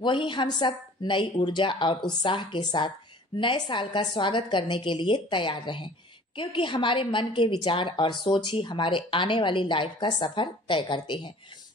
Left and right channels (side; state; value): both; normal; correlation 0.49